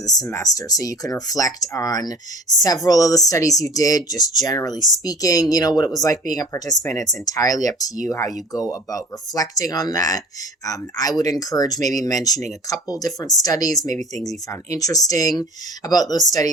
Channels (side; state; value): both; normal; correlation 0.43